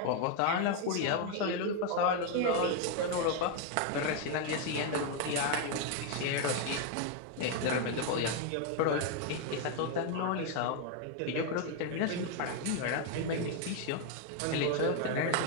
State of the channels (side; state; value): both; different; correlation 0.01